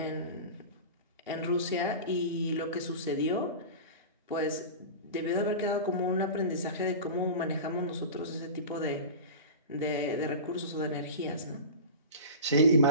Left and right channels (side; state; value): both; inverted; correlation -0.30